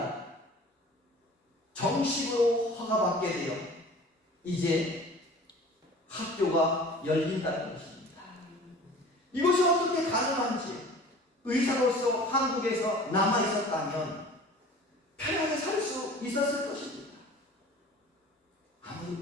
정식으로 허가받게 되어 이제 학교가 열린다는 것입니다. 이것이 어떻게 가능한지 의사로서 한국에서 남아있었다면 편하게 살 수 있었을 것입니다.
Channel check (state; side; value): normal; both; correlation 0.44